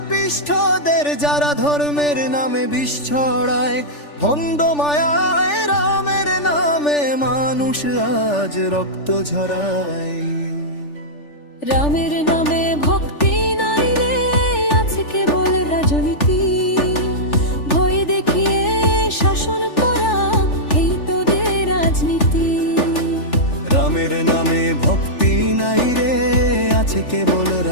যারা ধর্মের নামে বিষ ছড়ায়। ভণ্ড মায়ায় রামের নামে মানুষ আজ রক্ত ঝরায়। রামের নামে ভক্তি নাই রে, আছে কেবল রাজনীতি। ভয় দেখিয়ে শাসন করা, এই তোদের রাজনীতি। রামের নামে ভক্তি নাই রে, আছে কেবল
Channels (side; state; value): right; late; 3.4 ms